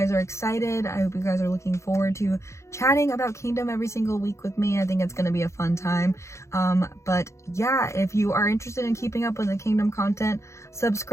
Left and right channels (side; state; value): right; late; 0.14 ms